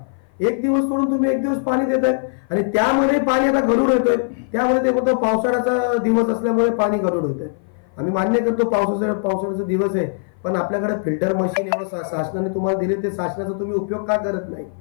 एक दिवस सोडून तुम्ही एक दिवस पाणी देत आहे, आणि त्यामध्ये पाणी आता गढूळ येतोय. त्यामुळे ते म्हणतो पावसाळ्याचा दिवस असल्यामुळे पाणी गढूळ होत आहे. आम्ही मान्य करतो पावसाळ्याचा दिवस आहे, पण आपल्याकडे फिल्टर मशीन एवढं शासनाने तुम्हाला दिले, ते शासनाचा तुम्ही उपयोग का करत नाही?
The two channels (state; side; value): silent; right; 56 dB below the other